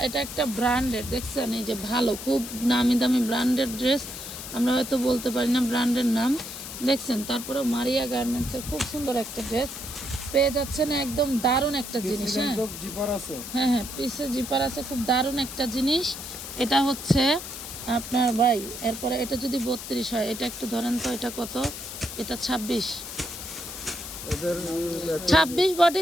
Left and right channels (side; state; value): left; noise; hiss, 9 dB below the sound